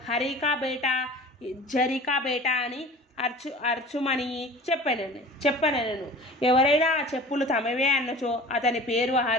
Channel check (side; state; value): both; normal; correlation 0.40